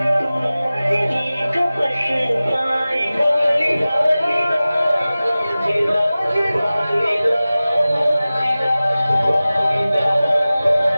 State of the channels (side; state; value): both; inverted; correlation -0.97